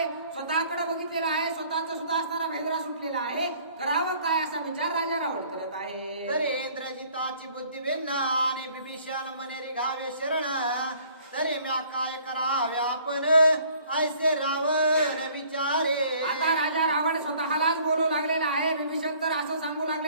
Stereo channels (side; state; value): both; inverted; correlation -0.56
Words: स्वतःकडे बघितलेलं आहे स्वतःचा सुद्धा असणारा भेदरा सुटलेला आहे करावं काय असा विचार राजा रावण करत आहे. तरी इंद्रजिताची बुद्धी भिन्न आणि विभीषण मने रिघावे शरण तरी म्या काय करावे आपण ऐसे रावण विचारे. आता राजा रावण स्वतःलाच बोलू लागलेला आहे विभीषण तर असं सांगू